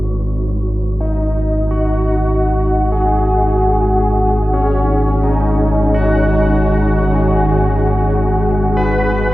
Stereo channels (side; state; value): both; normal; correlation 0.95